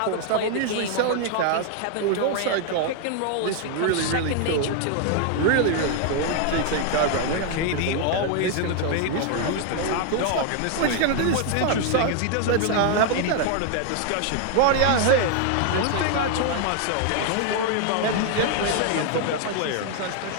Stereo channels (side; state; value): both; different; correlation 0.00